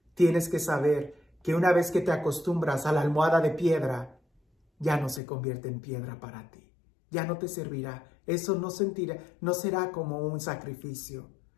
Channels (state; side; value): drops out; right; at 5.2 s